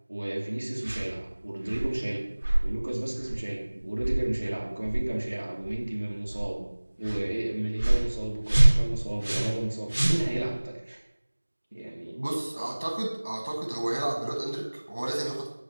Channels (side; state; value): both; inverted; correlation -1.00